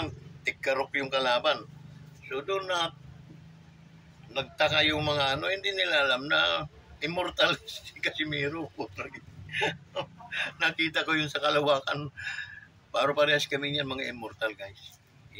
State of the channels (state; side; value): identical; both; correlation 1.00